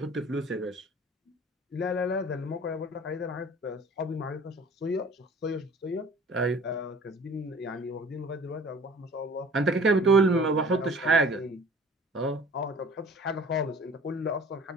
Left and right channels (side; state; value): both; normal; correlation 0.48